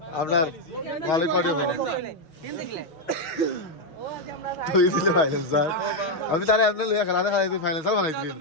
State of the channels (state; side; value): late; right; 6.3 ms